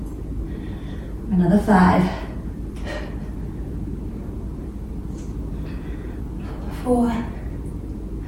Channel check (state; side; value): identical; both; correlation 1.00